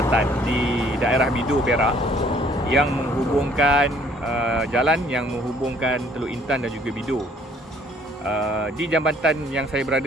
di daerah Bidur, Perak yang menghubungkan jalan yang menghubungkan Teluk Intan dan juga Bidur. Di jambatan yang saya berada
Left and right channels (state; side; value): normal; both; correlation 0.60